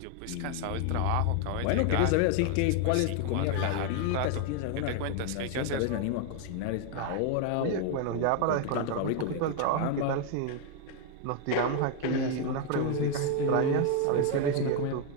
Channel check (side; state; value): both; different; correlation 0.01